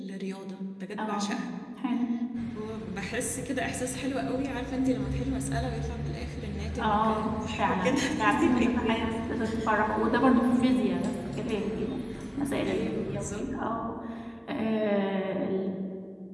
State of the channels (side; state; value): both; identical; correlation 1.00